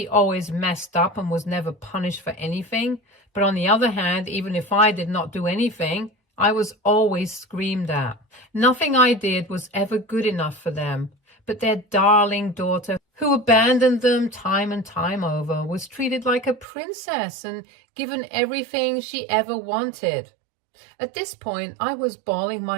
always messed up and was never punished for anything. But on the other hand, even if I did not do anything, I was always screamed at. Nothing I did was ever good enough for them. But their darling daughter, who abandoned them time and time over, was treated like a princess and given everything she ever wanted. At this point, I was bawling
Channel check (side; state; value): left; drops out; at 16.7 s